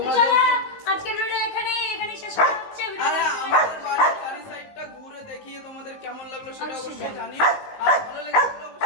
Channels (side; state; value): right; late; 19 ms